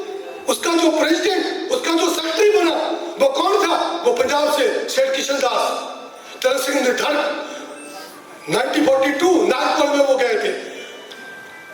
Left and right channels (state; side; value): identical; both; correlation 1.00